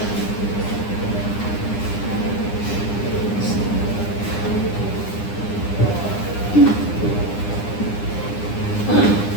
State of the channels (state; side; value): late; right; 9.9 ms